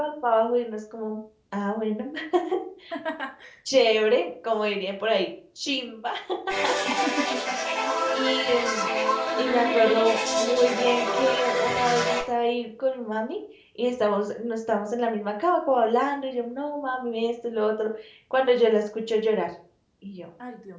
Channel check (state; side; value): identical; both; correlation 1.00